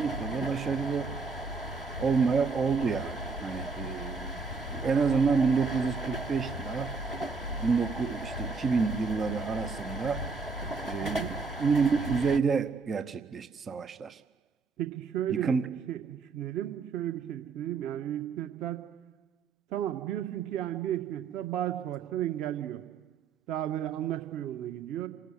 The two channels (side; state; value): left; quieter; 4.9 dB